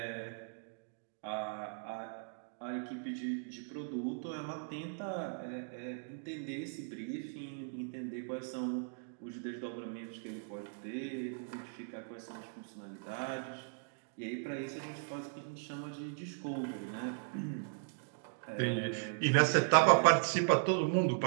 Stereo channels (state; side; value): silent; left; digital silence